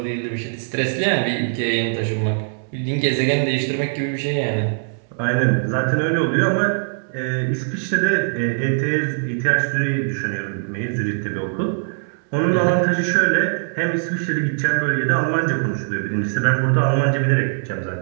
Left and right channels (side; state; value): left; silent; 65 dB below the other